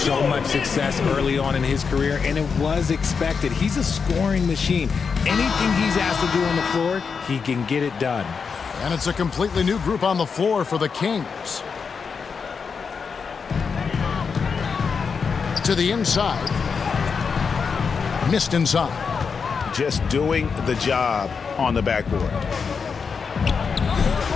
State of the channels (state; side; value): quieter; right; 5.7 dB